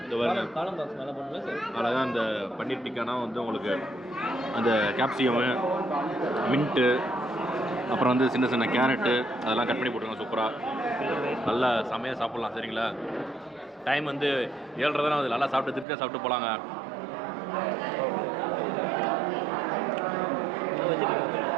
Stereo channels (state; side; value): drops out; left; at 15.9 s